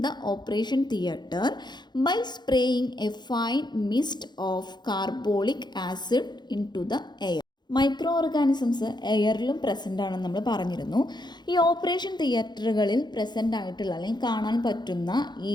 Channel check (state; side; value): late; right; 0.21 ms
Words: the operation theatre by spraying a fine mist of carbolic acid into the air. Micro organisms എയറിലും present ആണെന്ന് നമ്മൾ പറഞ്ഞിരുന്നു. ഈ ഓപ്പറേഷൻ തിയേറ്ററുകളിൽ പ്രസൻ്റ് ആയിട്ടുള്ള അല്ലെങ്കിൽ കാണാൻ പറ്റുന്ന ഈ